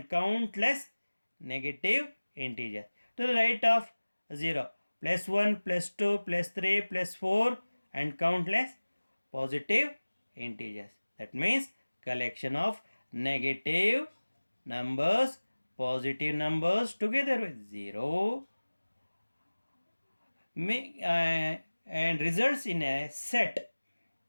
countless negative integers. To the right of 0, +1, +2, +3, +4 and countless positive integers. That means collection of negative numbers, positive numbers together with 0 and results in a set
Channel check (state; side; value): inverted; both; correlation -1.00